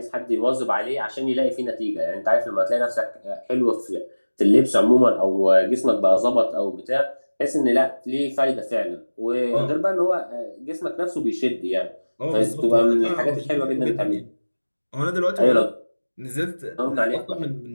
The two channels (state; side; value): inverted; both; correlation -1.00